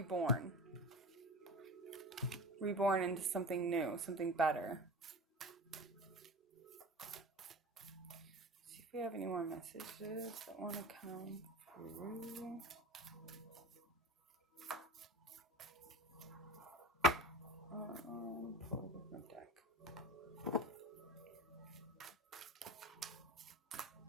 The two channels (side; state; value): both; normal; correlation 0.32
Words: into something new, something better. See if we have any more messages that want to come through. Pull a different deck.